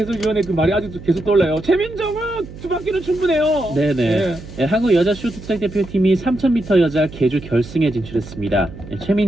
그 말이 아직도 계속 떠올라요. 최민정은 두 바퀴는 충분해요. 네네. 네, 한국 여자 쇼트트랙 대표팀이 3000m 여자 계주 결승에 진출했습니다.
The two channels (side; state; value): right; noise; hum, 15 dB below the sound